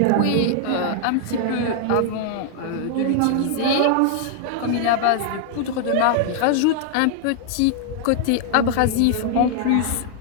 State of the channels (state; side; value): different; both; correlation -0.01